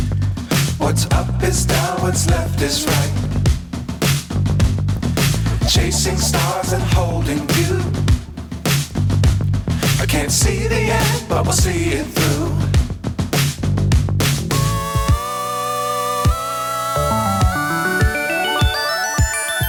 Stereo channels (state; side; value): identical; both; correlation 1.00